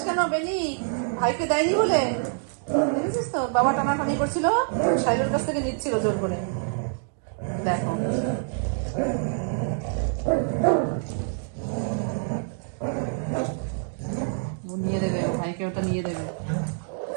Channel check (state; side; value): silent; left; digital silence